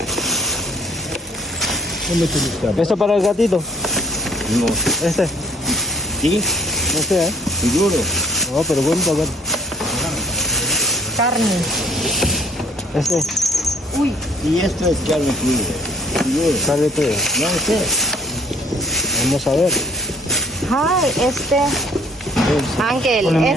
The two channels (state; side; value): normal; both; correlation 0.59